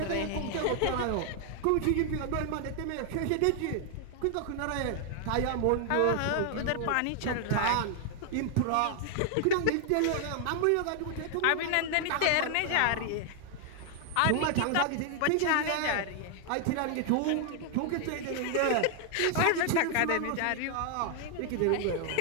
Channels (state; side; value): different; both; correlation 0.00